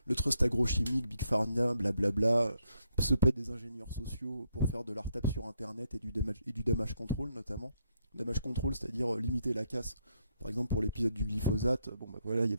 le trust agrochimique, Big Pharma, blablabla, se paie des ingénieurs sociaux pour faire de l'art tape sur internet et du damage control notamment. Damage control, c'est-à-dire limiter la casse. Par exemple, pour l'épisode du glyphosate, bon bah voilà, il y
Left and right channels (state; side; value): inverted; both; correlation -0.77